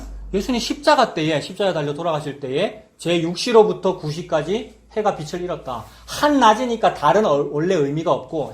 예수님 십자가 때에, 십자가에 달려 돌아가실 때에 제6시로부터 9시까지 해가 빛을 잃었다. 한낮이니까 달은 원래 의미가 없고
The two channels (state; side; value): identical; both; correlation 1.00